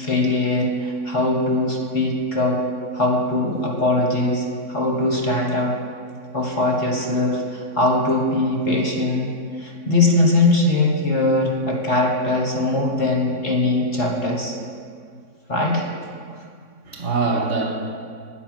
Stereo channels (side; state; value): right; late; 3.6 ms